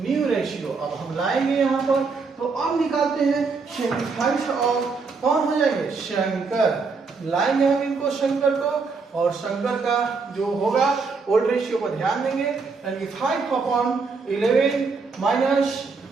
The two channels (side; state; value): left; quieter; 4.6 dB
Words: रेशियो। अब हम लाएंगे यहाँ पर, तो अब निकालते हैं सेक्रीफाइस और कौन हो जाएंगे, शंकर। लाएंगे हम इनको, शंकर को, और शंकर का जो होगा ओल्ड रेशियो पर ध्यान देंगे, यानी 5/11 माइनस